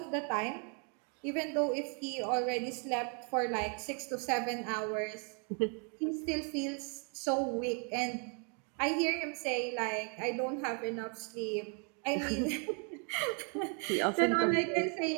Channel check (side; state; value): left; quieter; 38.4 dB